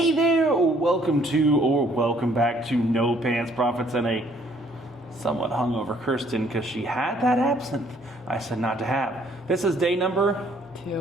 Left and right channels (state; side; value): normal; both; correlation 0.62